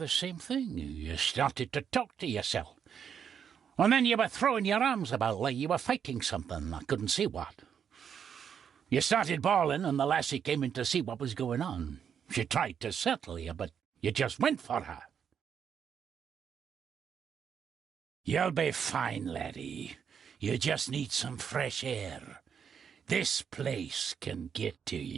same thing. You started to talk to yourself. And then you were throwing your arms about like you were fighting something. I couldn't see what. You started bawling and the lassie came in to see what was going on. She tried to settle you, but you just went for her. You'll be fine, laddie. You just need some fresh air. This place can get to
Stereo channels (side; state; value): left; quieter; 7.8 dB